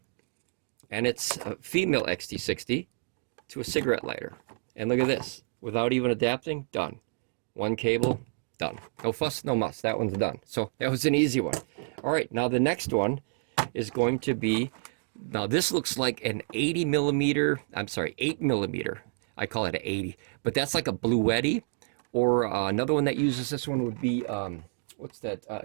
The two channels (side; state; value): left; silent; digital silence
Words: And it's a female XT60 to a cigarette lighter. And look at this. Without even adapting, done. One cable, done. No fuss, no muss. That one's done. So that was an easy one. All right, now the next one is going to be, now this looks like an 8 millimeter. I call it an 80. But that's like a Bluetti. Or another one that uses this one would be, what's that?